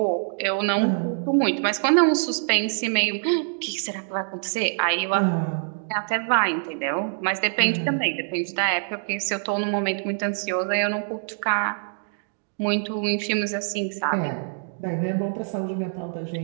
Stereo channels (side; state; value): left; silent; digital silence